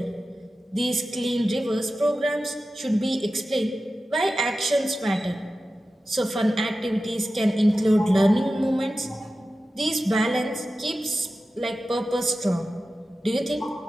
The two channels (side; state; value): both; normal; correlation 0.94